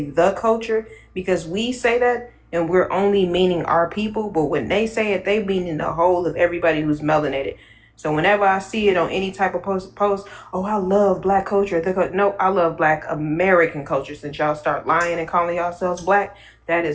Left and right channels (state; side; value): identical; both; correlation 1.00